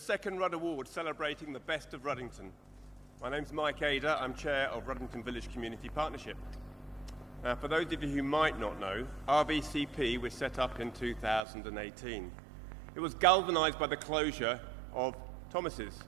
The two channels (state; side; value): drops out; left; at 11.5 s